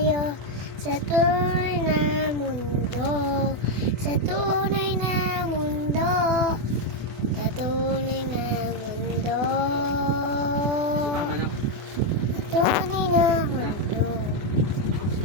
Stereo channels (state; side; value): late; left; 24 ms